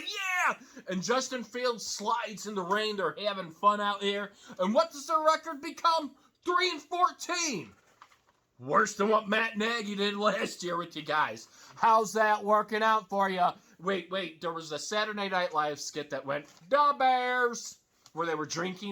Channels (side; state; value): both; identical; correlation 1.00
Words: yeah. And Justin Fields slides in the rain. They're having fun out here. And what does their record become? 3-14. Worse than what Matt Nagy did last year with you guys. How's that working out for you? Wait, there was a Saturday Night Live skit that went, "The Bears," where they were